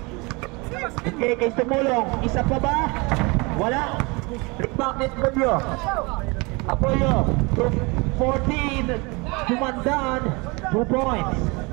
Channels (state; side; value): quieter; left; 27.3 dB